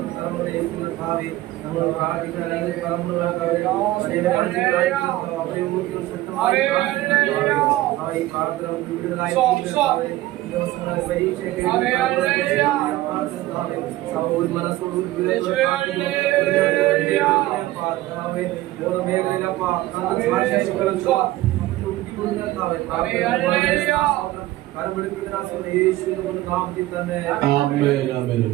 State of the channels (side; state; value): left; quieter; 16.6 dB